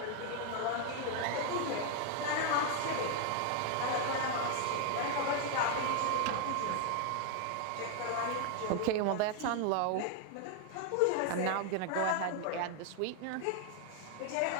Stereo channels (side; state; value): both; different; correlation 0.00